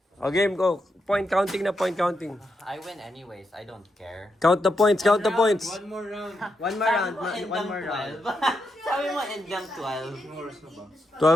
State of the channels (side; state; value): both; normal; correlation 0.83